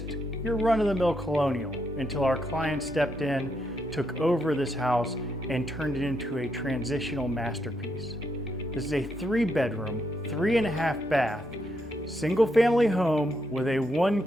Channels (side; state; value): both; normal; correlation 0.79